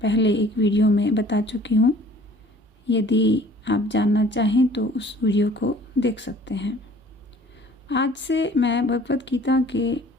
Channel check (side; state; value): both; normal; correlation 0.51